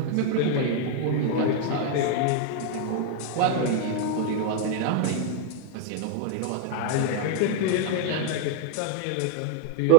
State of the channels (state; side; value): different; both; correlation 0.00